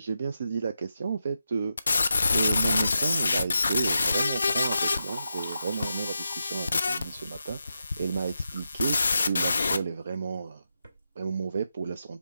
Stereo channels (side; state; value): both; inverted; correlation -0.87